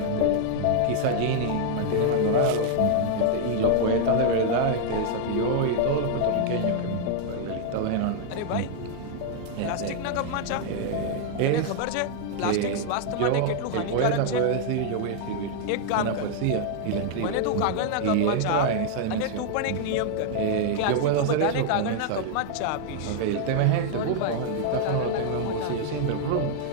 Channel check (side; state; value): both; different; correlation 0.00